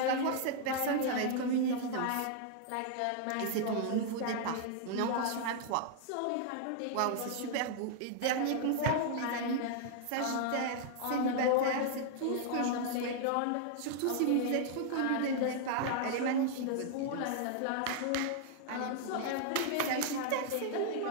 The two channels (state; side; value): different; both; correlation -0.01